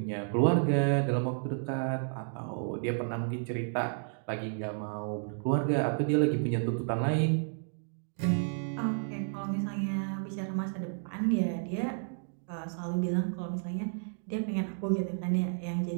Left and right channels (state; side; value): silent; left; digital silence